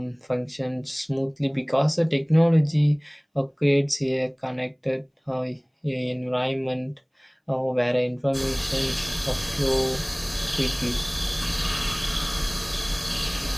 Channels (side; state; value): both; identical; correlation 1.00